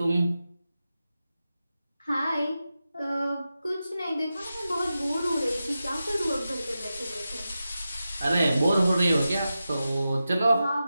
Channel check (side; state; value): both; inverted; correlation -0.92